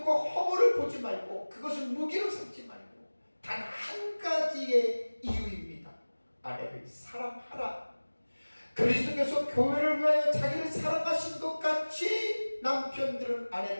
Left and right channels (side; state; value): both; inverted; correlation -1.00